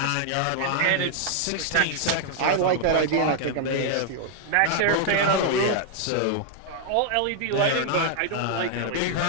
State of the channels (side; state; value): both; different; correlation 0.00